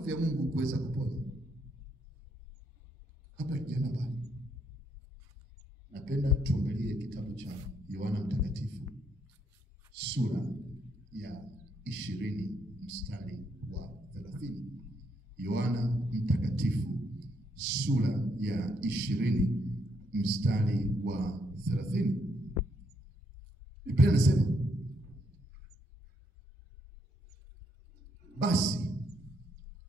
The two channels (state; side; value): normal; both; correlation 0.74